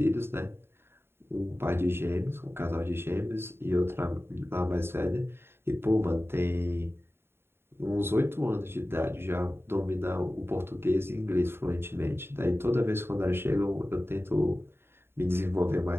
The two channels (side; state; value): left; late; 0.11 ms